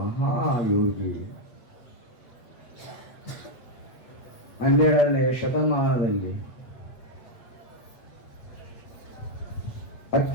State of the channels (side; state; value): right; late; 8.2 ms